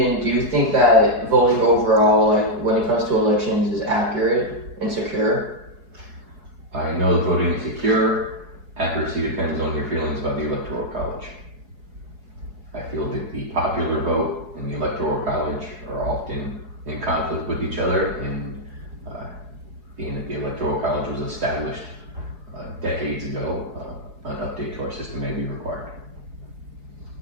do you think that voting overall, like when it comes to elections, is accurate and secure? I know that voting is secure. Accuracy depends on your feelings about the Electoral College. I feel that the popular vote and the Electoral College are often in conflict with each other, and being that the Electoral College was established decades ago, an update to our system may be required.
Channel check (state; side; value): late; left; 4.7 ms